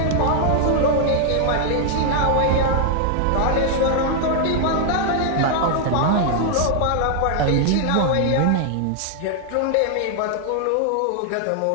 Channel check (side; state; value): both; different; correlation 0.00